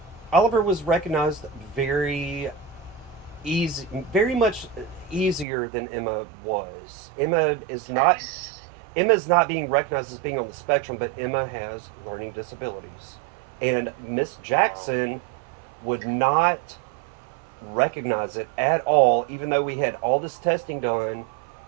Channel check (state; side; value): drops out; left; at 5.5 s